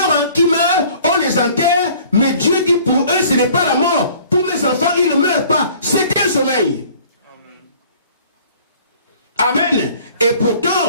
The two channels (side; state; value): both; inverted; correlation -0.52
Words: on les enterre, mais Dieu dit pour eux, ce n'est pas la mort. Pour mes enfants, ils ne meurent pas. C'est un sommeil. Amen. Amen. Et